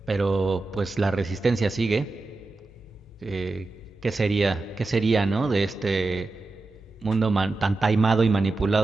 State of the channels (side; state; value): left; quieter; 3.4 dB